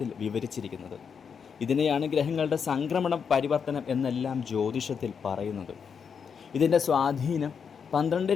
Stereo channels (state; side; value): quieter; right; 6.6 dB